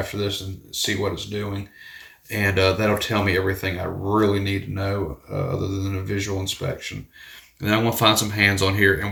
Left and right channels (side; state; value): both; identical; correlation 1.00